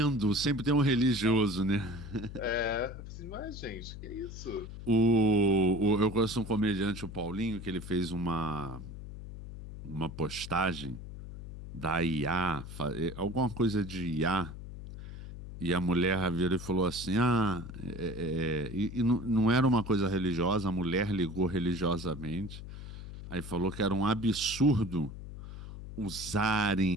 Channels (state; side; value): noise; left; hum, 11 dB below the sound